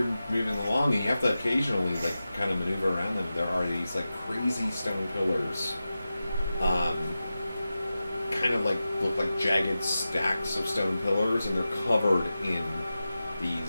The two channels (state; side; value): inverted; both; correlation -0.93